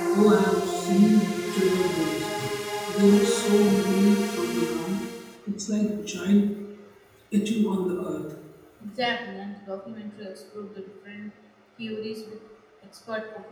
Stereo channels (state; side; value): identical; both; correlation 1.00